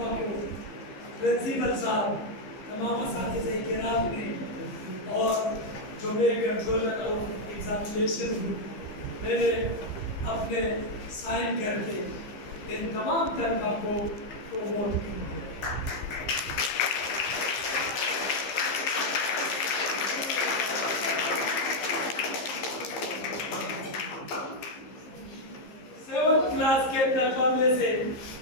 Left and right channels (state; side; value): late; right; 15 ms